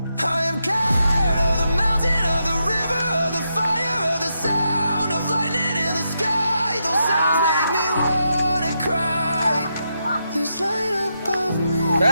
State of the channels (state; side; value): inverted; both; correlation -0.83